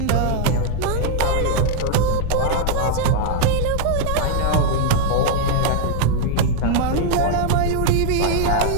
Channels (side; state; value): both; different; correlation -0.01